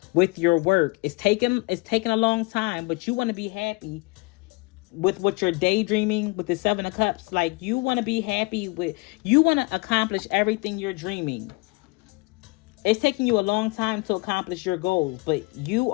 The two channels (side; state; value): right; quieter; 26.1 dB